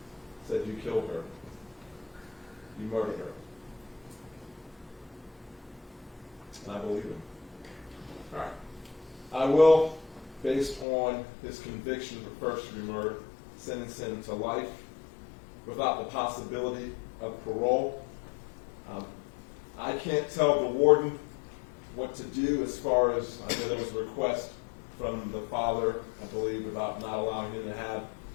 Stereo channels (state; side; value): drops out; right; at 10.9 s